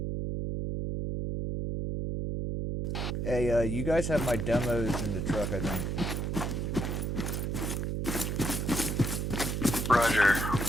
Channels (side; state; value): right; noise; hum, 1 dB below the sound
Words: Hey, you guys have my demos in the truck, I think. Roger.